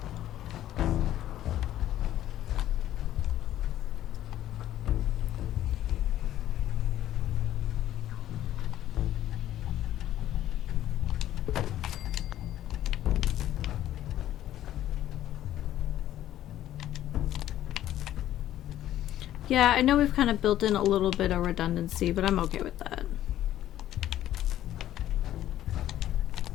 Yeah, I know we've kind of built in a little bit of redundancy, but I'm okay with that.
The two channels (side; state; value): right; quieter; 12.7 dB